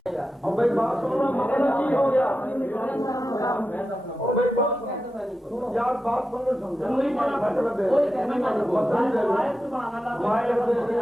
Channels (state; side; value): normal; both; correlation 0.90